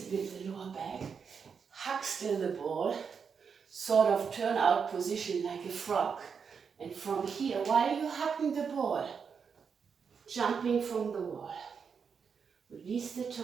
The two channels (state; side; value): quieter; left; 6.2 dB